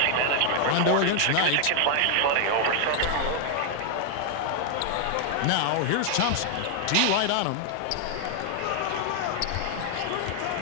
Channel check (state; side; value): different; both; correlation 0.00